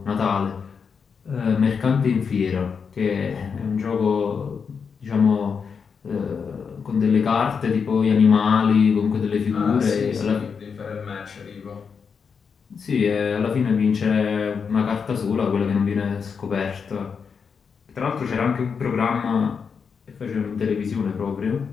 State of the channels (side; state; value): right; quieter; 6.0 dB